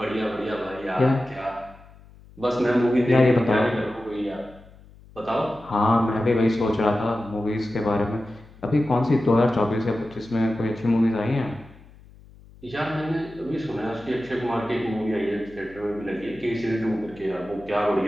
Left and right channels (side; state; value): left; noise; hum, 23 dB below the sound